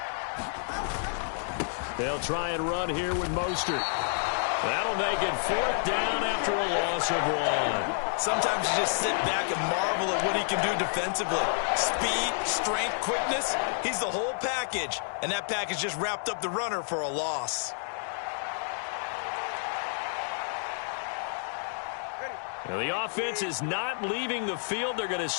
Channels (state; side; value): silent; right; digital silence